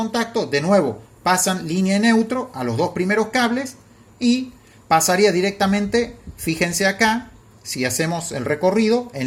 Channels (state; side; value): identical; both; correlation 1.00